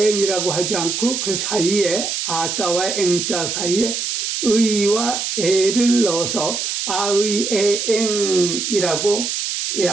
하지 않고 그 사이에 아자와 eng자 사이에 의와 에를 넣어서 아의에eng이라고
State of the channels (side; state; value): right; noise; hiss, 2 dB below the sound